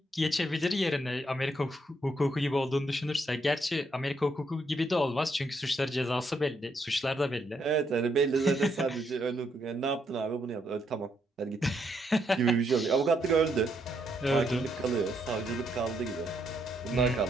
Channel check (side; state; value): both; normal; correlation 0.76